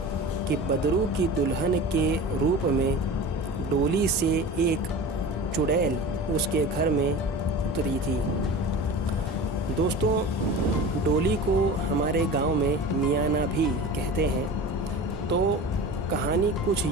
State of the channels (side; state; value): both; normal; correlation 0.34